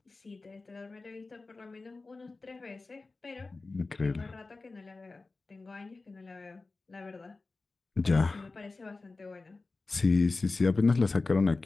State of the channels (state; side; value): quieter; right; 3.6 dB